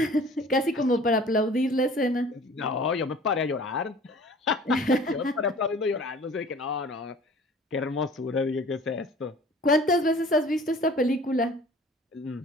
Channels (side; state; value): both; normal; correlation 0.47